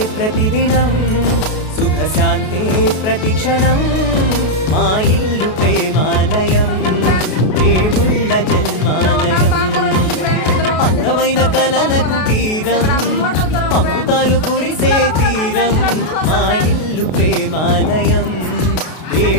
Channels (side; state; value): right; late; 32 ms